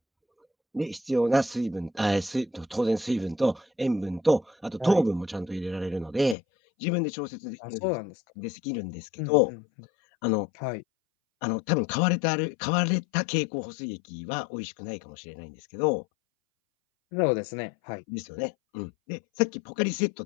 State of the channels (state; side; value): drops out; right; at 6.4 s